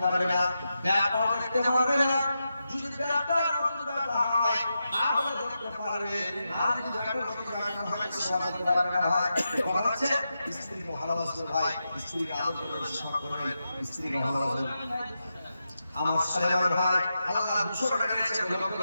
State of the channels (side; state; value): both; inverted; correlation -0.88